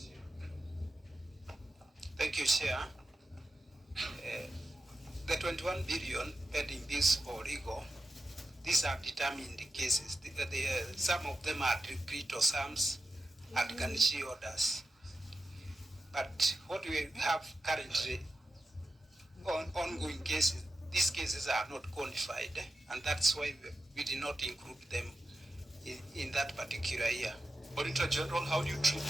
Thank you, Chair. The 21 billion pending this for legal, these are determined cases. Some of them are decreto sums and garnishee orders. But what we have currently on ongoing cases, these cases are not qualified, and that's why we did not include them in that particular year. Auditor General, how do you treat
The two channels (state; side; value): normal; both; correlation 0.89